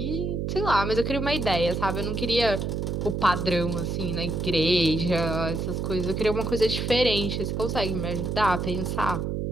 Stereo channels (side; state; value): right; noise; hum, 2 dB below the sound